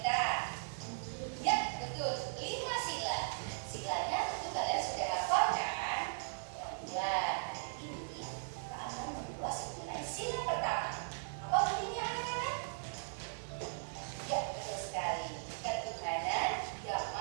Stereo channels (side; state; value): left; silent; 52 dB below the other